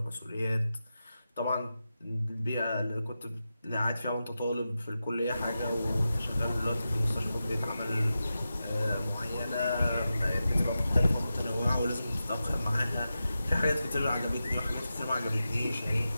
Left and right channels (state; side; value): inverted; both; correlation -0.91